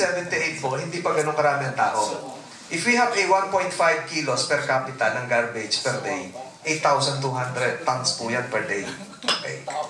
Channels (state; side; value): identical; both; correlation 1.00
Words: po, hindi pa ganun karami ang tao. If we have a 1.5 kilos per capita ng garbage per day, 8,200 tons po yan per day. Okay.